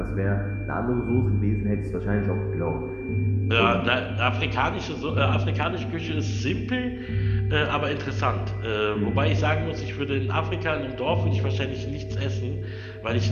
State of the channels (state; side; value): identical; both; correlation 1.00